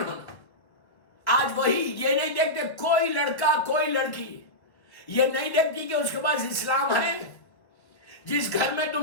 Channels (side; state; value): right; late; 1.3 ms